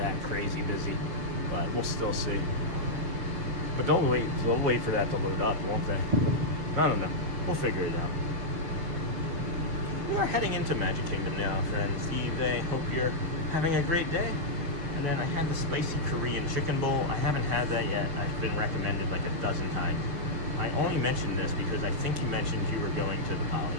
crazy busy, but we'll still see. But they'll wait for that to load up, won't they? I don't know. We'll figure it out. We are heading into Magic Kingdom now, friends. I hope you're having a great day. And then I had the spicy Korean chicken bowl. I haven't had that yet. I've been recommended like a dozen times. I only mentioned this because I think you mentioned you were going to the Poly.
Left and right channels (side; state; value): left; late; 6.6 ms